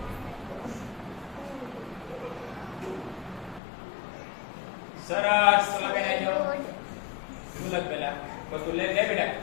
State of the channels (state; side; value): drops out; right; at 3.6 s